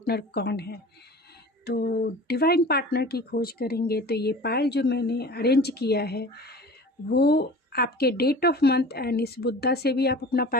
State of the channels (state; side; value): normal; both; correlation 0.40